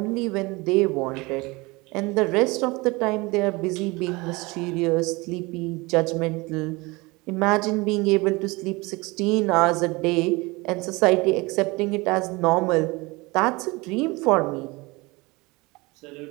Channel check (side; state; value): left; quieter; 24.1 dB